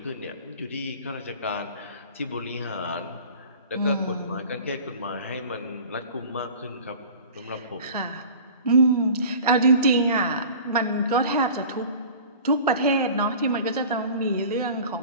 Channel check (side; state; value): both; inverted; correlation -0.42